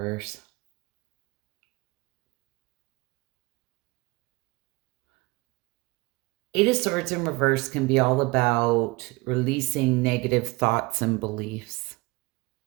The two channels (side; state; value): left; quieter; 24.0 dB